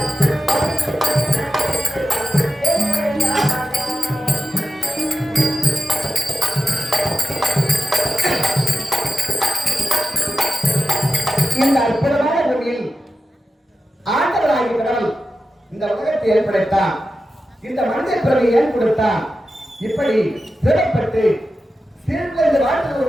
இந்த அற்புதமான பூமியில் ஆண்டவராகிய கடவுள் இந்த உலகத்தை ஏற்படுத்தான். இந்த மனித பிறவை ஏன் கொடுத்தான்? இப்படி சிறப்பட்டு சீர்குலைந்து வாழ்ந்த ஒரு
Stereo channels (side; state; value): both; normal; correlation 0.91